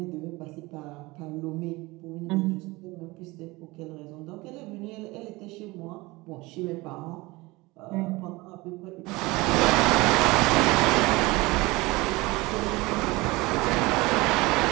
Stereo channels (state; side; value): quieter; left; 22.2 dB